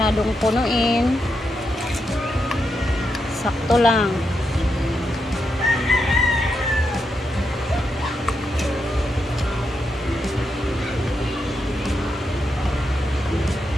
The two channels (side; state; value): both; normal; correlation 0.84